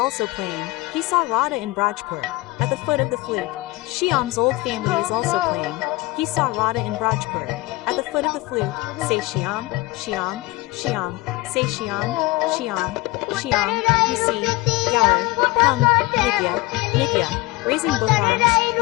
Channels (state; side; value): quieter; right; 20.3 dB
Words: also playing. He saw Radha in Brajpur, at the foot of the flute. Shyam's old family is also playing. He saw Radha in Brajpur, at the foot of the flute. Say Shyam, Shyam, Shyam. Say Shyam, Shyam, Shyam. You see, Gaur, hum, Nitya, Nitya. Raising both arms,